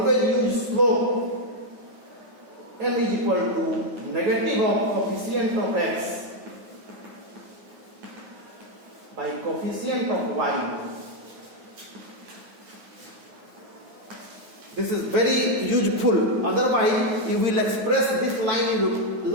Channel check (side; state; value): left; late; 9.3 ms